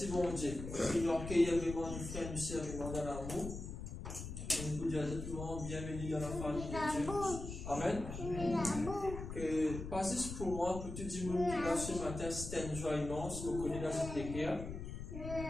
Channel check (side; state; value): left; noise; rumble, 7 dB below the sound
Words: mon Dieu. Il nous accueille vraiment nos frères et nos sœurs dans l'amour. Et nous pouvons dire tout le monde bienvenue dans la famille de Dieu. Amen. Que pas juste pour moi, pour tout le monde qui est là ce matin, c'était une joie immense. Vous connaissez dans cette écriture.